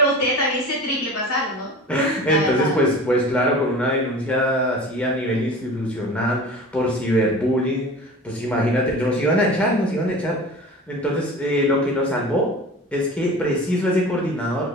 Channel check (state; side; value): normal; both; correlation 0.38